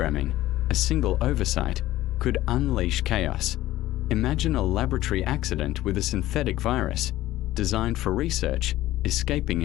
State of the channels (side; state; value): right; quieter; 15.4 dB